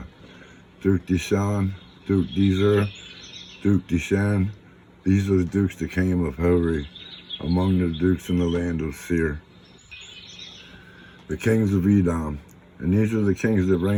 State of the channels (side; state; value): both; identical; correlation 1.00